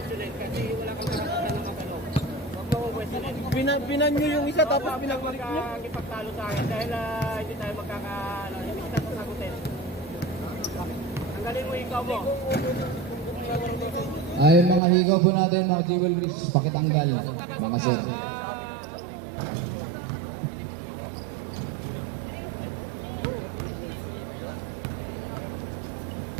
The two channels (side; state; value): left; drops out; at 14.8 s